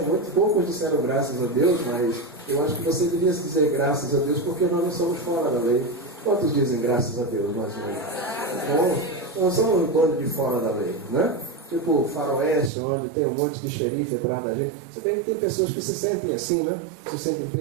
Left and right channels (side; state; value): left; drops out; at 12.7 s